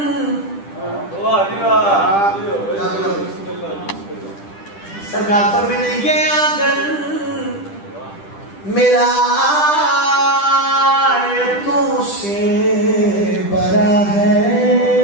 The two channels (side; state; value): right; late; 10 ms